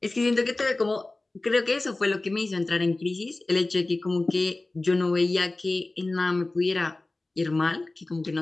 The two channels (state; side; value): quieter; right; 3.0 dB